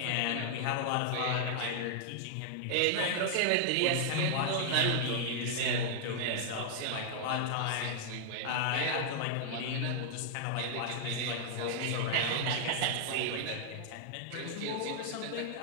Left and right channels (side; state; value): both; different; correlation -0.01